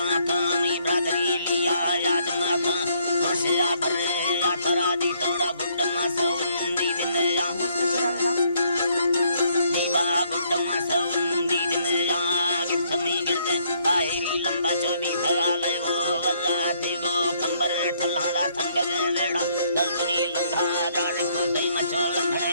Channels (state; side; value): inverted; both; correlation -0.68